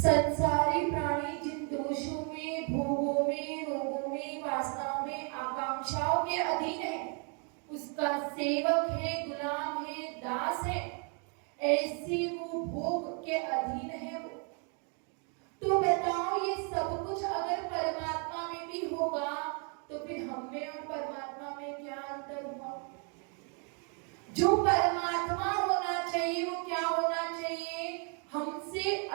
प्राणी जिन दोषों में, भोगों में, रोगों में, वासनाओं में, आकांक्षाओं के अधीन है, उसका सेवक है, गुलाम है, दास है, ऐसे वो भोग के अधीन है वो। तो बताओ ये सब कुछ अगर परमात्मा में भी होगा तो फिर हम में और परमात्मा में क्या अंतर हुआ? जो परमात्मा होना चाहिए वो क्या होना चाहिए? हमसे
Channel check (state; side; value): quieter; left; 38.2 dB